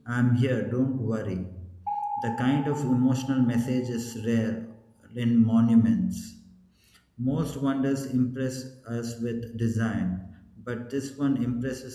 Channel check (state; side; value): identical; both; correlation 1.00